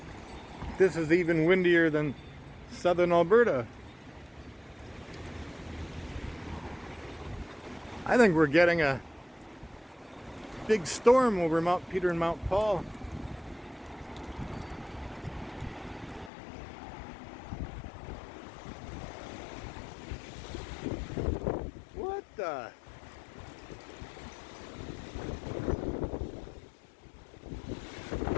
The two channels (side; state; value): right; drops out; at 16.3 s